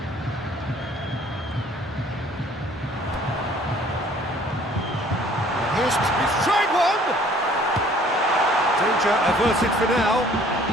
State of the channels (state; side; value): normal; both; correlation 0.55